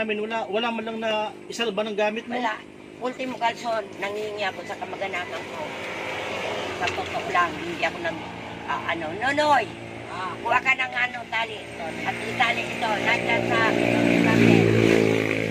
wala man lang na isalba ng gamit mo. Wala. Ultimo kalson, nangingi ako sa kamag-anakan ko. Sa totoo lang, hindi ako Nonoy, kuha ka ng tali. At itali ito, nandiyan sa kami.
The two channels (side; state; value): both; identical; correlation 1.00